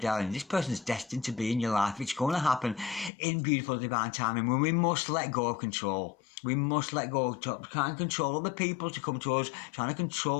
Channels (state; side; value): drops out; right; at 3.1 s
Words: This person is destined to be in your life. It's going to happen in beautiful divine timing, when we must let go of control. We must let go of trying to control other people to come to us, trying to